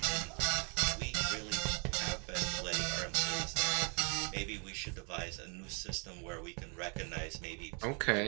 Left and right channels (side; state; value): left; quieter; 35.9 dB